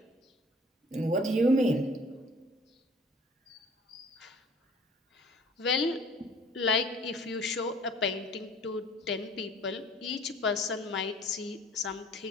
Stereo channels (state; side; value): normal; both; correlation 0.51